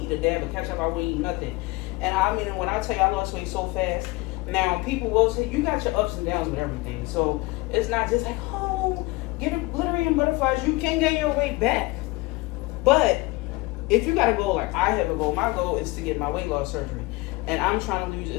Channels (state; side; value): quieter; right; 22.8 dB